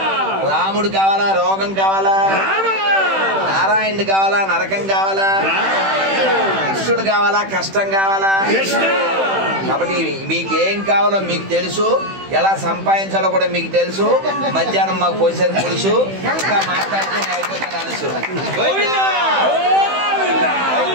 రాముడు కావాలా, రోగం కావాలా? నారాయణుడు కావాలా, నరకం కావాలా? కృష్ణుడు కావాలా, కష్టం కావాలా? కాబట్టి మీకేం కావాలో మీకు తెలుసు, ఎలా సంపాదించాలో కూడా మీకు తెలుసు. మధ్యాహ్నం మాకు పోసేది తెలుసు, ఇంకా మాట్లాడితే అయిపోతే తెలుసు.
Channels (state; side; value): late; left; 15 ms